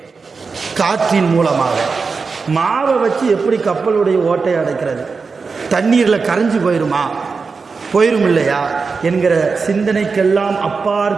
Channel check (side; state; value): left; quieter; 4.8 dB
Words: காற்றின் மூலமாக மாவை வச்சு எப்படி கப்பலுடைய ஓட்டையை அடைக்கிறது? தண்ணீரில் கரைஞ்சு போயிரும் இல்லையா என்கிற சிந்தனைக்கெல்லாம்